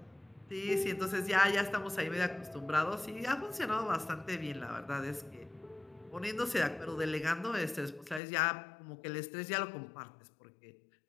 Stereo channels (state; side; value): drops out; right; at 8.2 s